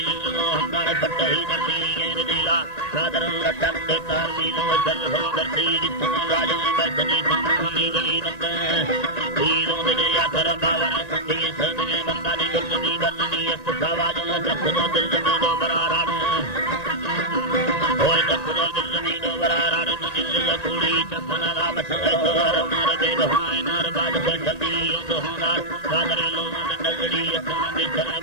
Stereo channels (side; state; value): right; late; 1.9 ms